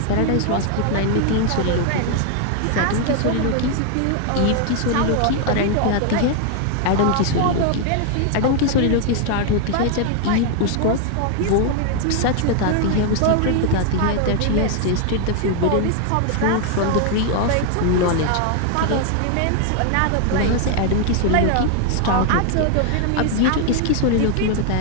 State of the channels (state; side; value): different; both; correlation 0.00